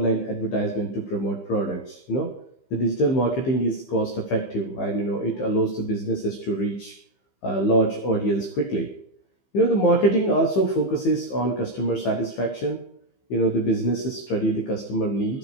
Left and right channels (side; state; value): right; late; 15 ms